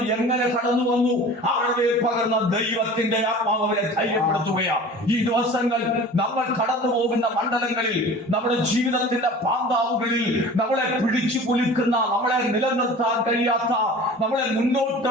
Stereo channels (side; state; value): both; normal; correlation 0.41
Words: എങ്ങനെ കടന്നു വന്നു? അവരുടെ പകർന്ന ദൈവത്തിന്റെ ആത്മാവ് അവരെ ധൈര്യപ്പെടുത്തുകയാണ്. ഈ ദിവസങ്ങൾ നമ്മൾ കടന്നു പോകുന്ന മണ്ഡലങ്ങളിൽ, നമ്മുടെ ജീവിതത്തിന്റെ പാന്താവുകളിൽ നമ്മളെ പിടിച്ചു കുലുക്കുന്ന, നമ്മളെ നിലനിർത്താൻ കഴിയാത്ത, നമ്മളെ മുന്നോട്ട്